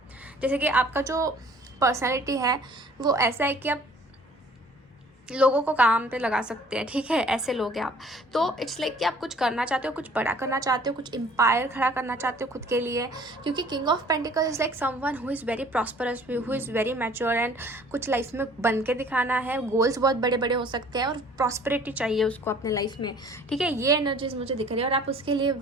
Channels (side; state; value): both; normal; correlation 0.53